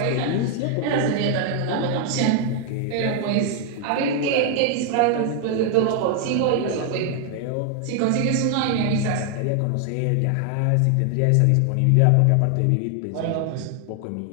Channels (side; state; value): both; different; correlation 0.00